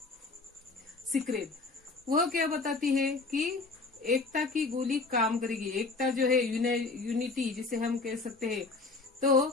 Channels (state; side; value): quieter; right; 3.8 dB